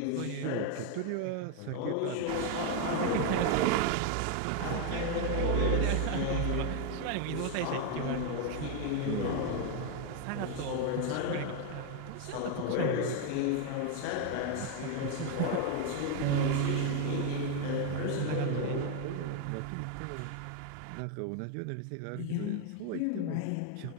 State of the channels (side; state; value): both; different; correlation 0.01